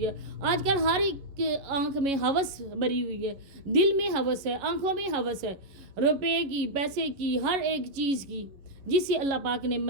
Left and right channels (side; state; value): left; late; 11 ms